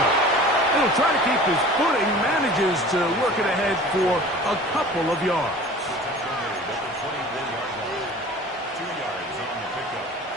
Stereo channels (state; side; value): normal; both; correlation 0.42